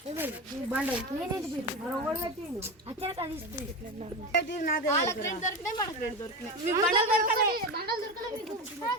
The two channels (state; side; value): normal; both; correlation 0.21